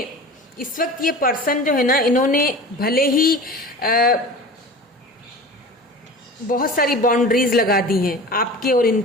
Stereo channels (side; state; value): both; normal; correlation 0.36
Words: इस वक्त ये पर्सन जो है ना, इन्होंने भले ही बहुत सारी बाउंड्रीज लगा दी हैं आपके और